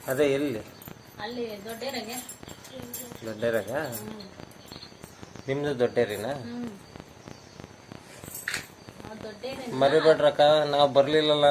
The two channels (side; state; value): both; identical; correlation 1.00